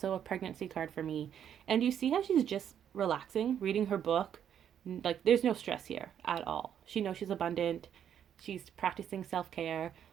a pregnancy card for me. And you see how she's just relaxing, reading her book. Like, there's no stress here at all. She knows she's abundant. She's practicing self-care.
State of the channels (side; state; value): left; quieter; 9.2 dB